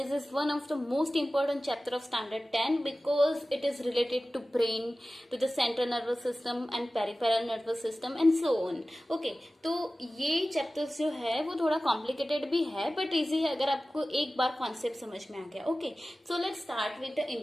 is one of the most important chapter of standard 10 because it is related to brain, to the central nervous system and peripheral nervous system and so on. Okay, तो ये chapters जो है वो थोड़ा complicated भी है but easy है अगर आपको एक बार concept समझ में आ गया. Okay, so let's start with the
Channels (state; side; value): normal; both; correlation 0.96